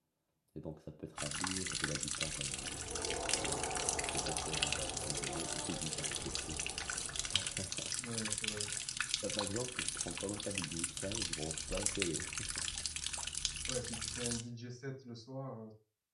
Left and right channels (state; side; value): identical; both; correlation 1.00